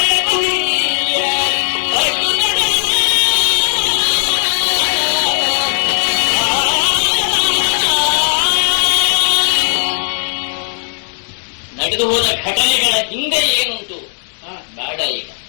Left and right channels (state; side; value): silent; right; digital silence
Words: ನಡೆದು ಹೋದ ಘಟನೆಗಳ ಹಿಂದೆ ಏನುಂಟು ಬೇಡ, ಈಗ